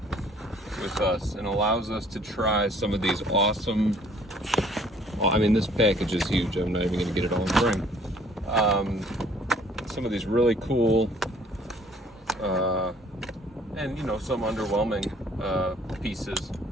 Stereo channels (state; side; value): normal; both; correlation 0.57